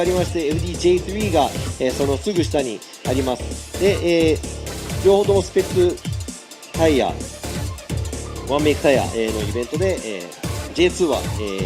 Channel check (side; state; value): both; identical; correlation 1.00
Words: りまして FDJ3 が、そのすぐ下にあります。で、両方ともスペックタイヤ、ワンメイクタイヤのイベントで、J2 は